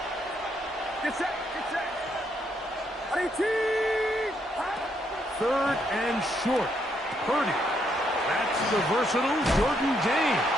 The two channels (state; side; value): normal; both; correlation 0.75